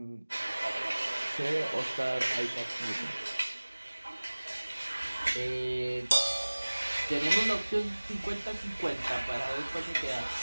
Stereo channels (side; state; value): both; inverted; correlation -1.00